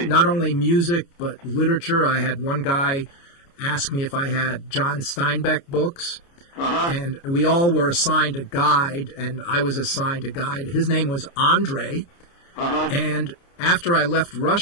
Not only music, but literature. I had one guy ask me if I had John Steinbeck books. And we all were assigned a guide, and I was assigned a guide. His name was Andre. And after I left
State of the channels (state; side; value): late; right; 29 ms